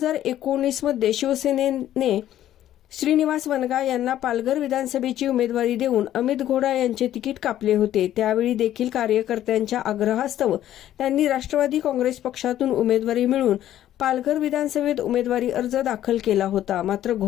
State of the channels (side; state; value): right; quieter; 12.3 dB